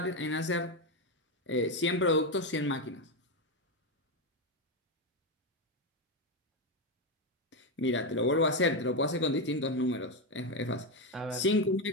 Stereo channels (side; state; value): both; normal; correlation 0.09